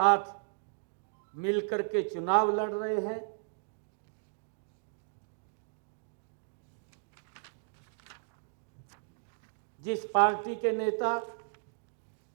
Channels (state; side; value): silent; left; digital silence